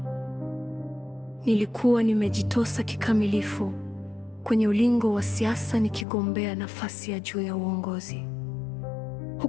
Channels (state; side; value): drops out; right; at 6.1 s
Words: Nilikuwa nimejitosa kikamilifu kwenye ulingo wa siasa, nikigombea nafasi ya juu ya uongozi,